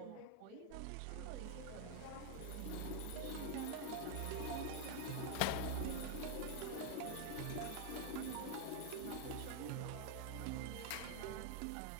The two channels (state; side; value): different; both; correlation 0.01